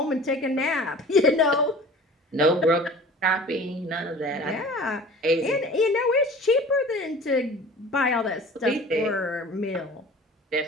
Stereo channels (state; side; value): normal; both; correlation 0.43